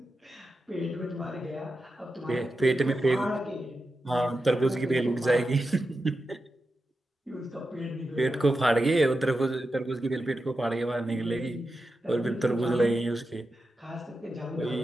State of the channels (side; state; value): both; normal; correlation 0.90